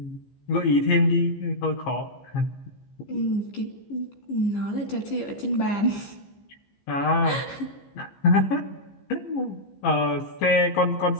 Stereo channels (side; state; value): right; late; 15 ms